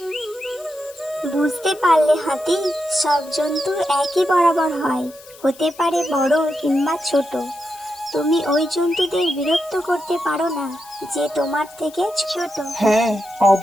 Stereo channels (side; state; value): left; noise; hiss, 22 dB below the sound